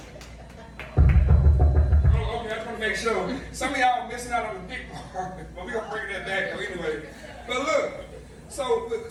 Oh, okay, I just want to make sure. Some of y'all missing out on the big part, but we're gonna bring that back though anyway. But look, so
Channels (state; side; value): identical; both; correlation 1.00